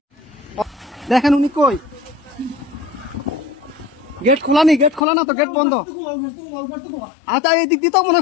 দেখেন উনি কই গেট খোলা নি গেট খোলা না তো গেট বন্ধ আচ্ছা এই দিক দিয়ে তো মনে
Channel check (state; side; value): drops out; right; at 5.0 s